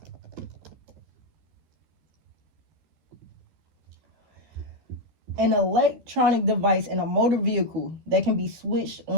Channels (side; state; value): left; late; 13 ms